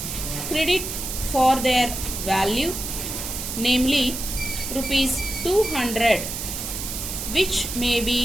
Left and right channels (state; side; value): noise; right; hiss, 5 dB below the sound